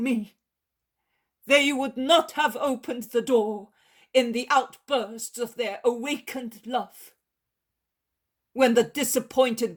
they would not have opened the door in the outbursts of their awakened love, when the disappointed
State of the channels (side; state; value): both; identical; correlation 1.00